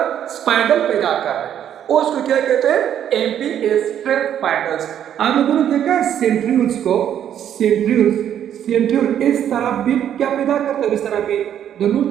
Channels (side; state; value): left; quieter; 9.9 dB